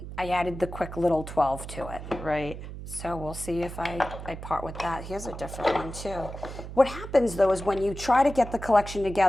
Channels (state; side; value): noise; right; hum, 10 dB below the sound